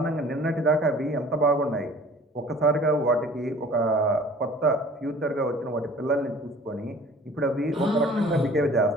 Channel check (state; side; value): normal; both; correlation 0.49